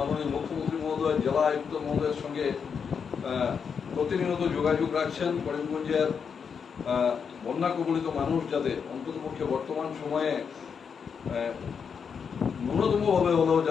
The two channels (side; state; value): right; quieter; 6.5 dB